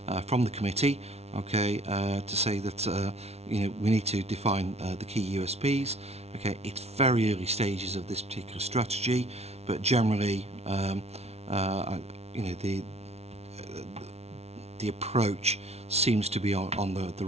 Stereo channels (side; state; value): left; late; 0.31 ms